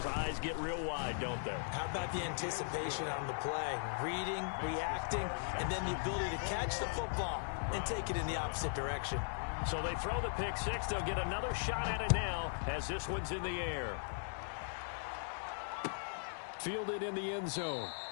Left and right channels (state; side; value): silent; right; digital silence